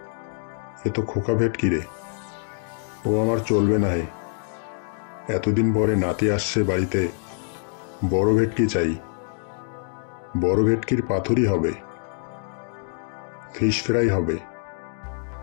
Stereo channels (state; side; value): silent; right; 62 dB below the other